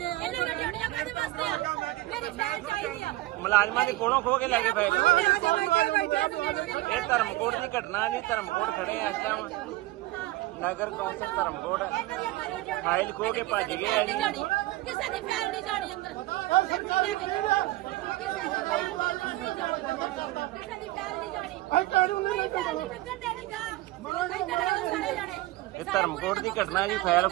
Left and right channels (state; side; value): quieter; left; 18.2 dB